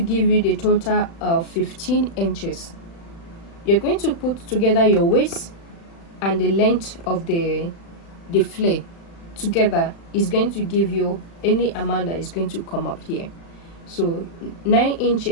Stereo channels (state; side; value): late; right; 36 ms